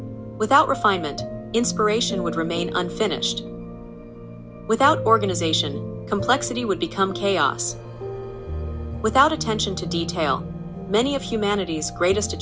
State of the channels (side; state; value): both; identical; correlation 1.00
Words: Without refinement, inspiration would remain unfinished. Without organization, complexity would become chaos. Without attention to detail, many of humanity's greatest